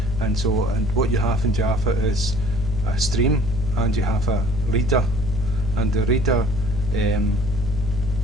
And what you have in Java is a stream, and you have a reader, and the reader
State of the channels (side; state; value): left; noise; hum, 5 dB below the sound